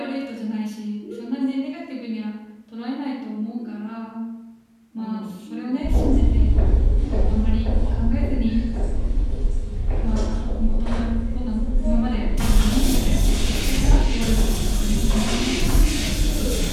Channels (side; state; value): both; identical; correlation 1.00